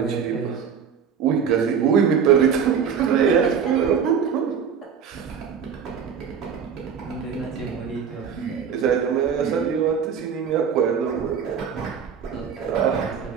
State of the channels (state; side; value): quieter; left; 7.1 dB